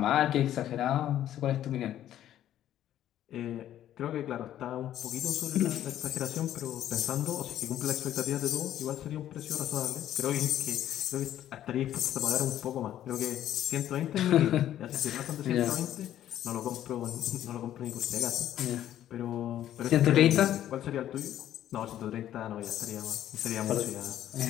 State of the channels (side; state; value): right; quieter; 11.8 dB